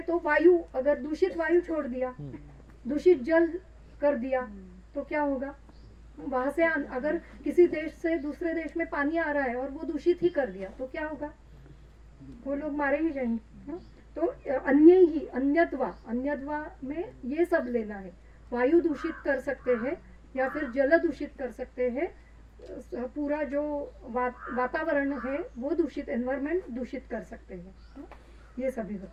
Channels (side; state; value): both; identical; correlation 1.00